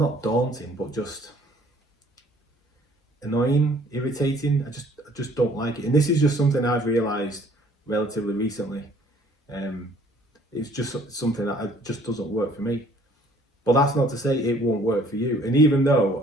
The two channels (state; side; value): normal; both; correlation 0.58